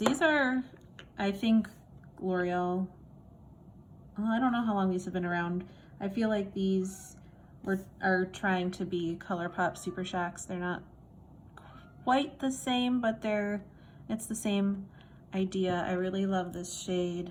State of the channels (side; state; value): both; identical; correlation 1.00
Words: are, I think, L'Oreal, I don't know how long these have been around. I feel like these are trying to be ColourPop Super Shocks. They're not quite the same, but it's the same idea. I really love this shade,